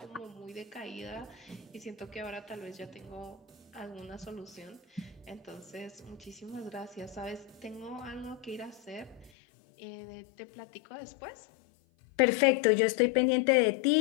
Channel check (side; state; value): right; drops out; at 9.3 s